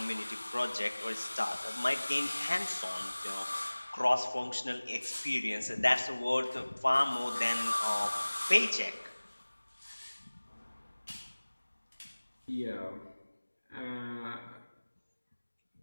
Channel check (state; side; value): inverted; both; correlation -1.00